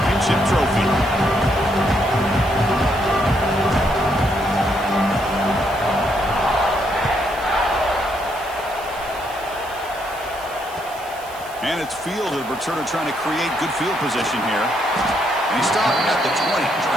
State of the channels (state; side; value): noise; right; hiss, 19 dB below the sound